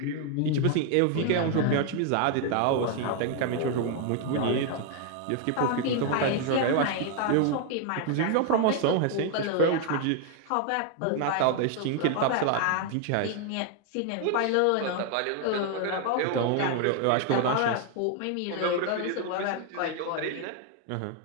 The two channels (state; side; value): different; both; correlation 0.00